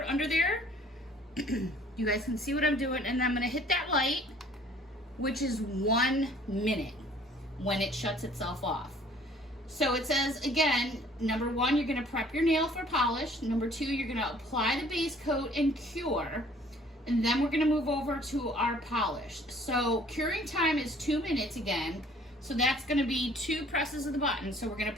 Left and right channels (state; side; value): normal; both; correlation 0.56